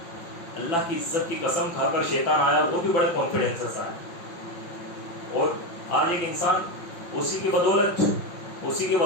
اللہ کی عزت کی قسم کھا کر شیطان آیا، وہ بھی بڑے کانفیڈنس سے آیا، اور آج ایک انسان اسی کی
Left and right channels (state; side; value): late; right; 5.9 ms